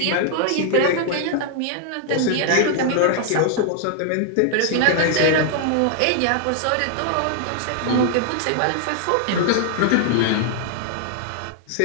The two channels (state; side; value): different; both; correlation 0.00